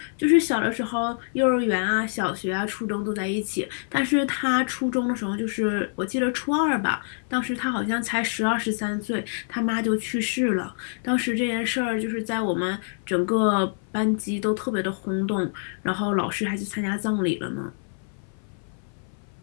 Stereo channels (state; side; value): silent; right; 57 dB below the other